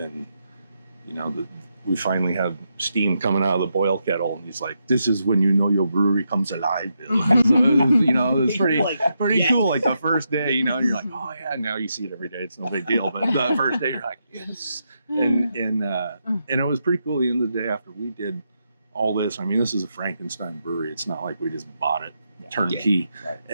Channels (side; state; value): both; inverted; correlation -0.83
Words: we finally have steam coming out of the boil kettle, and he's like, "This is when you know your brewery comes alive, Bill." So it was pretty cool. Like the first day, you're like, "Oh yeah." Now you see it every day; it's no big deal. But the first day, you're like, "Yes," and it was pretty cool. The end of the day, after we did all this, I mean, this is a Frankenstein brewery. It's not like we just bought it turnkey. Yeah. Right.